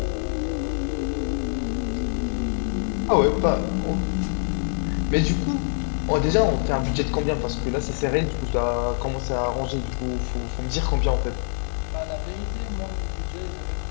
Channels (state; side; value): silent; right; digital silence